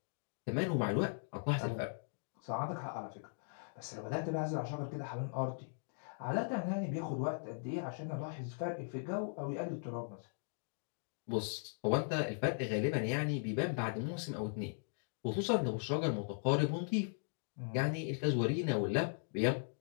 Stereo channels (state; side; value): silent; right; digital silence